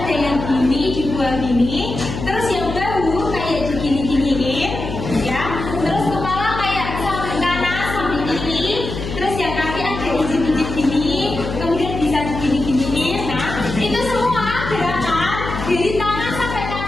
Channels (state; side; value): noise; left; hum, 7 dB below the sound